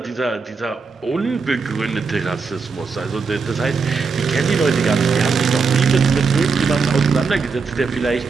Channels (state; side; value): quieter; left; 4.9 dB